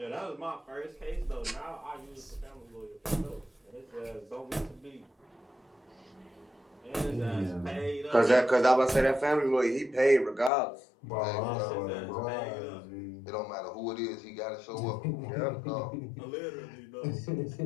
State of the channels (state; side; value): drops out; right; at 10.5 s